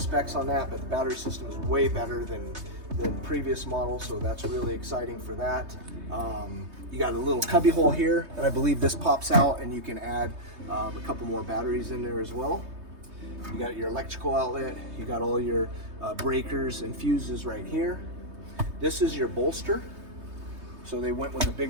on that, but the battery system is way better than than previous models, so that's really exciting for that. You got a little cubby hole here, and I believe this pops out and you can add a couple more batteries in there as well. You got your electrical outlet, you got all your breakers and fuses right here. This is your bolster. So they went with a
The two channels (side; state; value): left; late; 3.2 ms